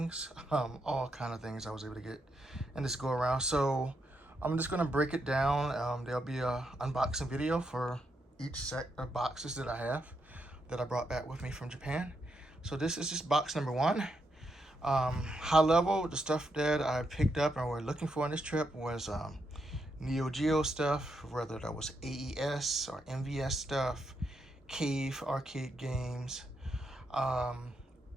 all kind of things I was able to get in this go around. So, I'm just going to break it down. There'll be a unboxing video for each set of boxes that I have that I brought back with me from Japan. So this is just box number one. High level, the stuff that I picked up and we're looking for on this trip was Neo Geo stuff, whether that was AES or MVS stuff, cave arcade games, um,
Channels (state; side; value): normal; both; correlation 0.81